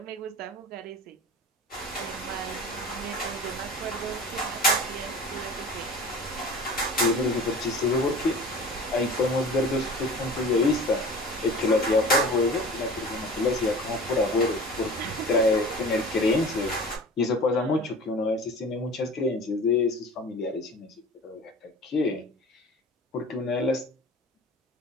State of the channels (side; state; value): both; normal; correlation 0.39